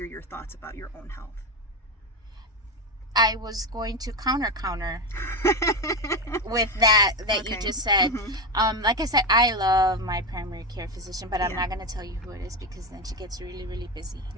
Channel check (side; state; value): both; normal; correlation 0.15